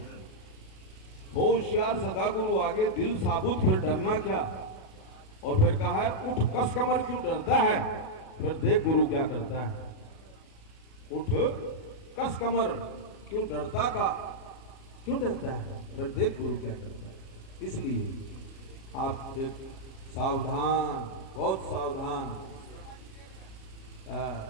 हो होशियार सदा गुरु आगे, दिल साबुत फिर डरना क्या। और फिर कहा है, उठ कस कमर क्यों डरता है, फिर देख गुरु क्या करता है। उठ कस कमर क्यों डरता है, फिर देख गुरु क्या करता है। इसलिए आप सावधान, बहुत सावधान।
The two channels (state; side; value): late; right; 37 ms